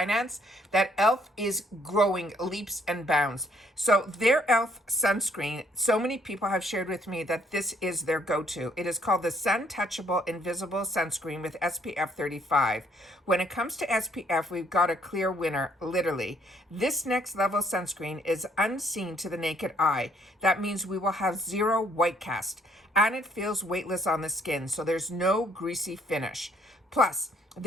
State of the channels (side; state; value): both; normal; correlation 0.67